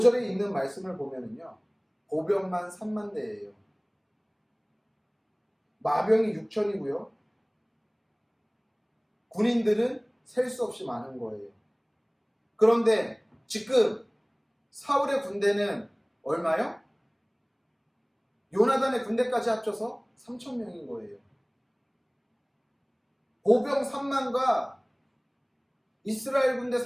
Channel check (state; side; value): identical; both; correlation 1.00